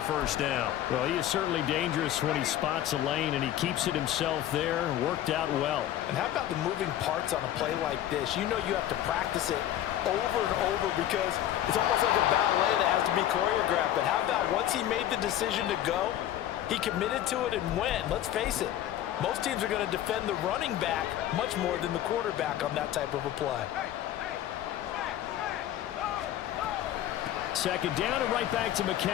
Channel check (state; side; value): quieter; right; 12.2 dB